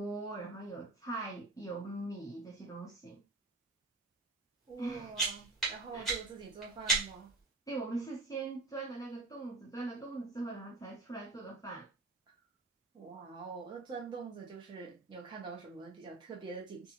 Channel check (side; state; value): left; quieter; 3.1 dB